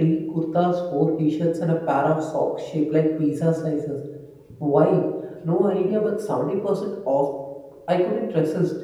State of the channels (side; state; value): both; identical; correlation 1.00